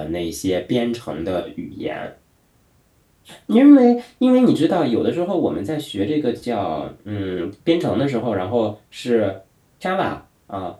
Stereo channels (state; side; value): identical; both; correlation 1.00